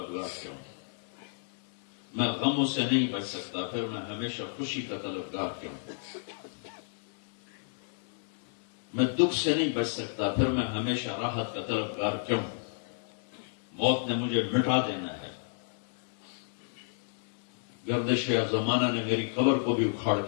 کیوں؟ میں غموں سے نہیں بچ سکتا، پھر میں ہمیشہ خوشی کا طلبگار کیوں؟ میں دکھ سے نہیں بچ سکتا، پھر میں ہمیشہ راحت کا طلبگار کیوں؟ موت نے مجھے مٹا دینا ہے، گردش زمانہ نے میری قبر کو بھی اکھاڑ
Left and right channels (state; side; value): silent; right; digital silence